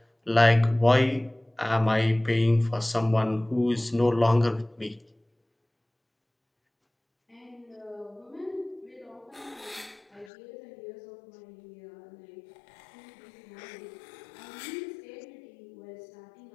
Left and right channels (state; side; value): drops out; right; at 10.3 s